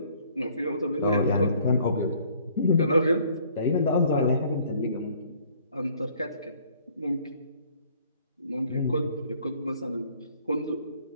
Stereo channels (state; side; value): inverted; both; correlation -0.59